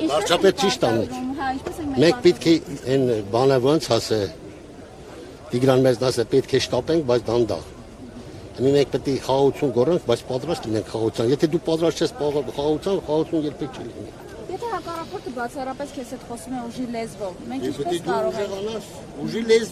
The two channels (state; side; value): identical; both; correlation 1.00